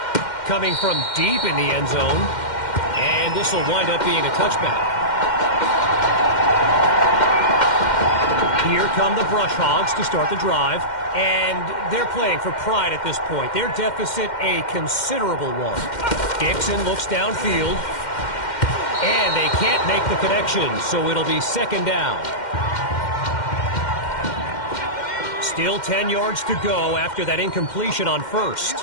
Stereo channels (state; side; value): late; right; 2.1 ms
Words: Coming from deep in the end zone. And this will wind up being a touchback. Here come the Brush Hogs to start the drive. And they're playing for pride at this point. Their deficit a considerable one. Dixon looks downfield. And they can't make the connection, so it'll be 2nd down. Still 10 yards to go after that incompletion on 1st.